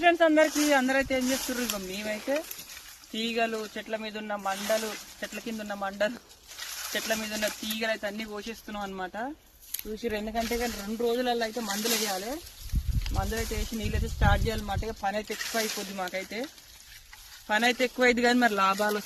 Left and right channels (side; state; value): both; identical; correlation 1.00